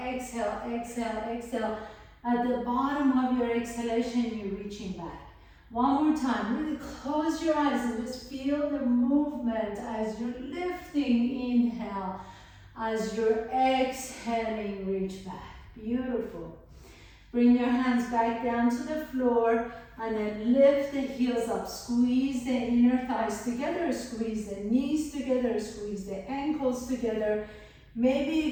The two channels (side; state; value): both; identical; correlation 1.00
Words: exhale, exhale, exhale. At the bottom of your exhalation, you're reaching back. One more time, really close your eyes and just feel the movement as you're lifting. Inhale, as you're exhaling, reach back. Beautiful. Bring your hands back down to the floor and then lift the heels up. Squeeze the inner thighs together, squeeze the knees together, squeeze the ankles together. Maybe